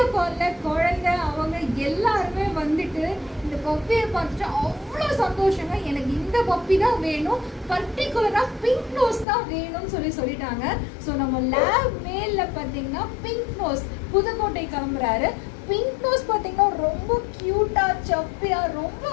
காலில் குழந்தை அவங்க எல்லாருமே வந்துட்டு இந்த பப்பியை பார்த்துட்டு அவ்வளோ சந்தோஷங்க. எனக்கு இந்த பப்பி தான் வேணும், பர்டிகுலராக பிங்க் நோஸ் தான் வேணும்னு சொல்லிட்டாங்க. ஸோ நம்ம லேப் மேலில் பார்த்தீங்கன்னா பிங்க் நோஸ் புதுக்கோட்டை கிளம்புறாரு. பிங்க் நோஸ் பார்த்தீங்கன்னா ரொம்ப க்யூட்டாக சப்பியாக ரொம்ப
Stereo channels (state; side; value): drops out; right; at 9.2 s